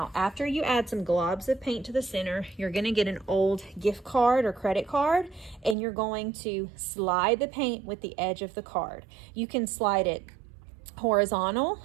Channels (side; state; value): left; drops out; at 5.8 s